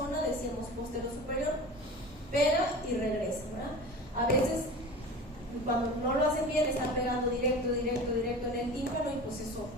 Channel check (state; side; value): normal; both; correlation 0.35